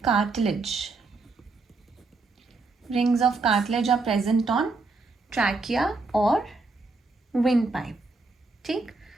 cartilage. Rings of cartilage are present on trachea और विंड पाइप। ठीक,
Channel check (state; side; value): quieter; left; 3.7 dB